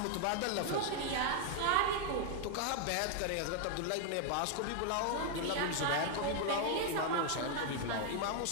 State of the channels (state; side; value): different; both; correlation 0.00